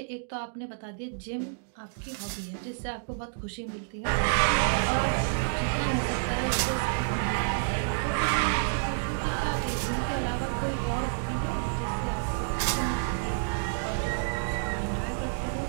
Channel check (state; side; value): silent; left; digital silence